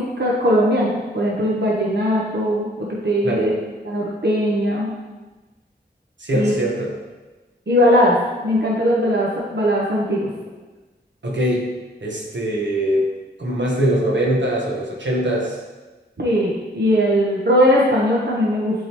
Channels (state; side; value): normal; both; correlation 0.54